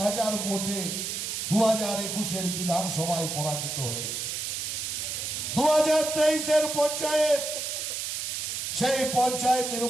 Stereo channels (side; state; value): right; noise; hiss, 3 dB below the sound